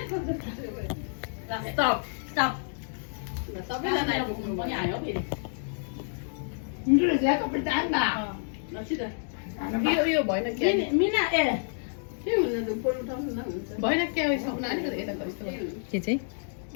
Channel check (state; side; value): silent; right; digital silence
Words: स्टप स्टप सबैजना आइपुग्नु पनि आयो फेरि मिठो रहेछ कपडा चाहन्दा यो भएन के मिना ए के हुन त फोन उठाउनु न हुन्छ भएन के सक्नु अलिकति यता गइस्तो के चाहिँ